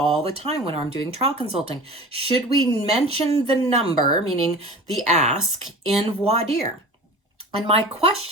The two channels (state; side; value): normal; both; correlation 0.38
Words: the time when I'm doing trial consulting. Should we mention the number, meaning the ask, in voir dire? And my